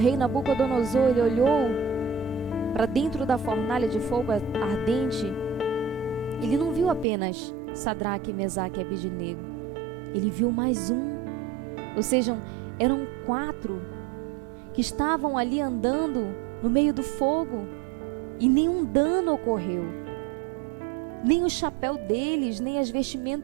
Nabucodonosor ele olhou para dentro da fornalha de fogo ardente, ele não viu apenas Sadraque, Mesaque e Abidnego, ele viu mais um, ou seja, eram 4 que estavam ali andando no meio do fogo e nenhum dano ocorreu. Nem o chapéu deles, nem as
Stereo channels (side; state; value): left; drops out; at 7.1 s